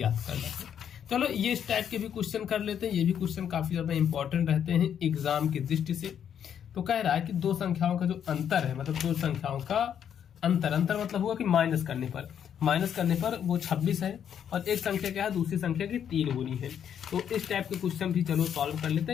करना है। चलो ये इस टाइप के भी क्वेश्चन कर लेते हैं, ये भी क्वेश्चन काफी ज्यादा इंपॉर्टेंट रहते हैं एग्जाम की दृष्टि से। तो कह रहा है कि दो संख्याओं का जो अंतर है, मतलब दो संख्याओं का अंतर मतलब हुआ कि माइनस करने पर वो 26 है, और एक संख्या क्या है, दूसरी संख्या की 3 गुनी है। तो इस टाइप के क्वेश्चन भी चलो सॉल्व कर लेते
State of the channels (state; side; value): quieter; right; 8.8 dB